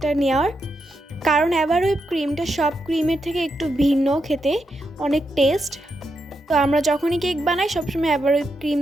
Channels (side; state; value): both; normal; correlation 0.84